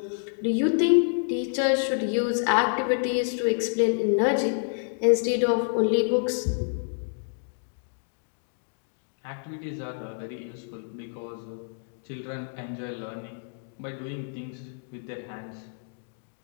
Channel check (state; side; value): silent; right; digital silence